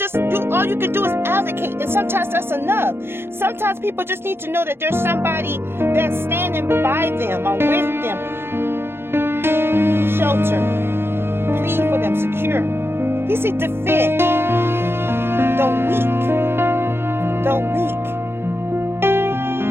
all you can do is advocate, and sometimes that's enough. Sometimes people just need to know that there's somebody that's standing by them or with them. Shelter, plead for them, secure. He said defend the weak,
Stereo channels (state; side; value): late; left; 0.11 ms